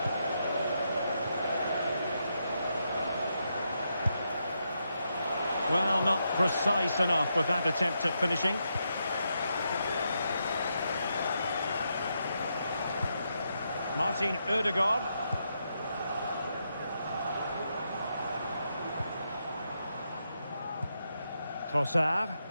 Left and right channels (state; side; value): inverted; both; correlation -0.82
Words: Well, not precise enough with that attempt at finishing. Martin Ødegaard. Trossard.